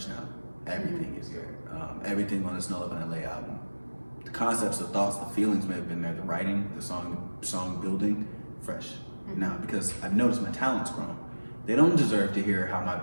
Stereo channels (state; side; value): inverted; both; correlation -1.00